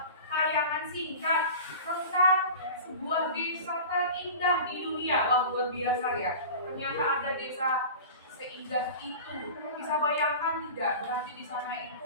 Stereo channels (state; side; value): inverted; both; correlation -0.35